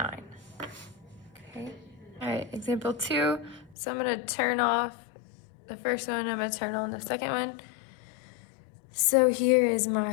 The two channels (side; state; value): right; drops out; at 3.8 s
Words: Okay. All right, example 2. So I'm gonna turn off the first one, I'm gonna turn on the second one. So here is